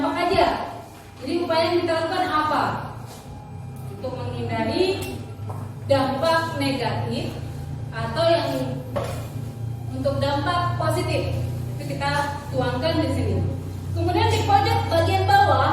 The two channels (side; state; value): both; identical; correlation 1.00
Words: aja. Jadi upaya yang kita lakukan apa? Untuk menghindari dampak negatif atau yang untuk dampak positif. Itu kita tuangkan di sini. Kemudian di pojok bagian